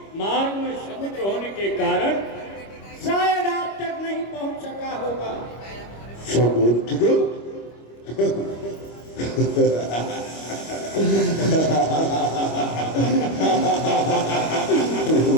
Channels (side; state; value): right; late; 25 ms